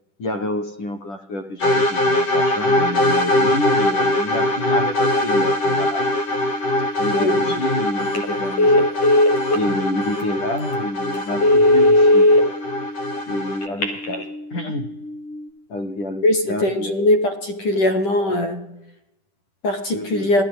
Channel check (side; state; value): right; late; 10 ms